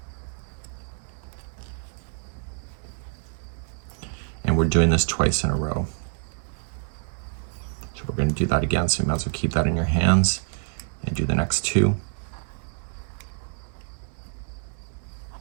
And we're doing this twice in a row. So we're going to do that again, so you might as well keep that in your hands and do the next 2.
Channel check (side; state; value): left; silent; 60 dB below the other